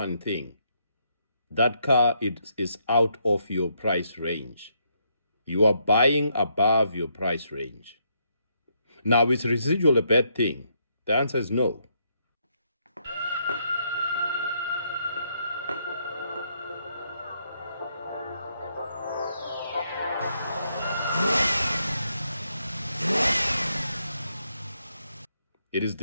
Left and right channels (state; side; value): inverted; both; correlation -0.76